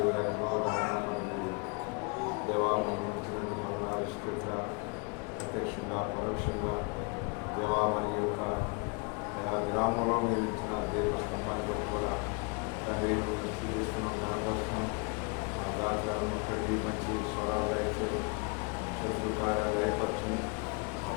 మనకు దేవా మనం వచ్చినందుకు వందనాలు స్తోత్ర. ప్రత్యక్షంగా పరోక్షంగా దేవా మరి యొక్క గ్రామంలో మీరు ఇచ్చిన దేవస్తంభాన్ని బట్టి కూడా తండ్రి మేము చూపిస్తున్నాం, కనపరుస్తున్నాం. ఆ గాత్రాలను తండ్రి మంచి స్వరాలు దయచేసి శత్రుకార్యాలు దయపరచని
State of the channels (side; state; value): right; quieter; 33.0 dB